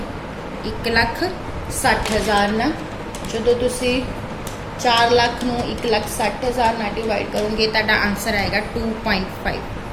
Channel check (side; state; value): both; identical; correlation 1.00